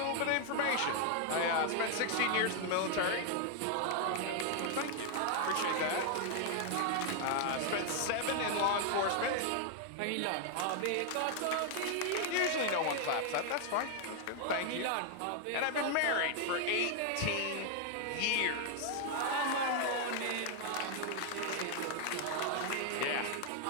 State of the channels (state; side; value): different; both; correlation 0.00